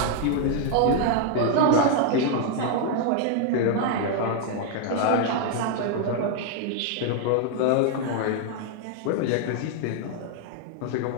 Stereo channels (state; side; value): different; both; correlation 0.00